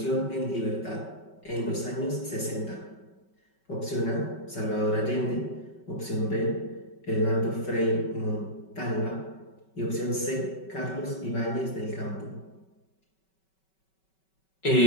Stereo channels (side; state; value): right; late; 5.3 ms